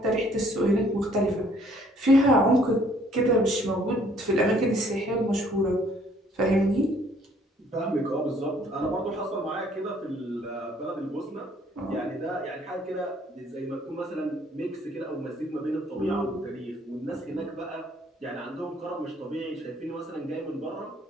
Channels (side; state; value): both; normal; correlation 0.62